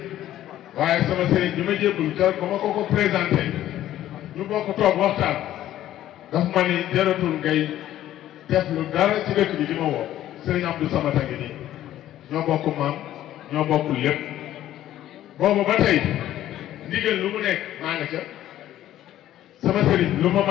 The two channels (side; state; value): right; quieter; 12.9 dB